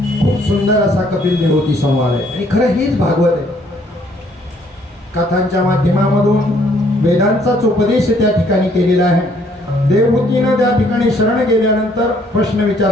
खूप सुंदर असा कपिल देवहूती संवाद आहे आणि खरं हेच भागवत आहे. कथांच्या माध्यमामधून वेदांचाच उपदेश त्या ठिकाणी केलेला आहे. देवहूतीनं त्या ठिकाणी शरण गेल्यानंतर प्रश्न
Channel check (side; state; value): both; normal; correlation 0.64